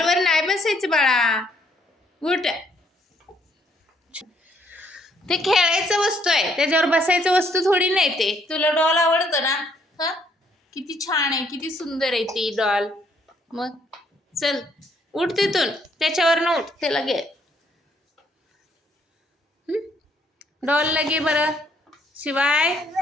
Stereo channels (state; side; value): normal; both; correlation 0.68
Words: नाही बसायचं बाळा, उठ. ते खेळायचं वस्तू आहे, त्याच्यावर बसायचं वस्तू थोडी नाही. ते तुला डॉल आवडतं ना? हा, किती छान आहे, किती सुंदर आहे ती डॉल. मग चल उठ तिथून, त्याच्यावर न उठ, त्याला घे. डॉलला घे बरं. शिवाय